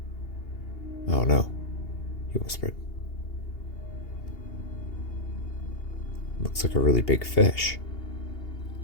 Oh no, he whispered. Looks like a really big fish.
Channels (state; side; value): late; right; 2.8 ms